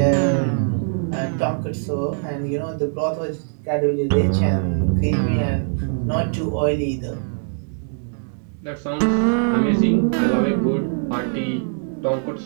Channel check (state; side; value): silent; left; digital silence